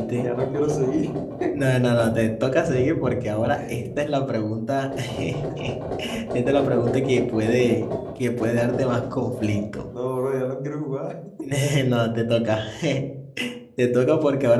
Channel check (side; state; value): both; identical; correlation 1.00